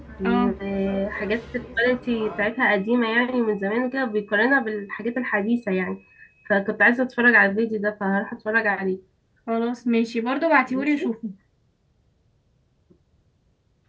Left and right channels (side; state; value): both; identical; correlation 1.00